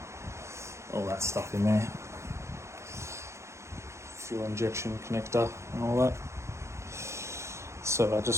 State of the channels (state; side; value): late; left; 0.14 ms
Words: that stuff in there, fuel injection connector and all that. So I